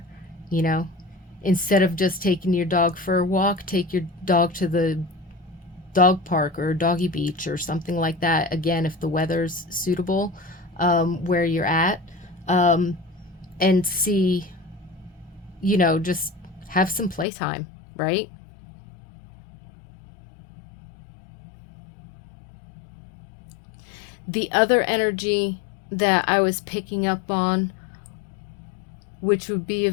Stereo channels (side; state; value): right; drops out; at 17.2 s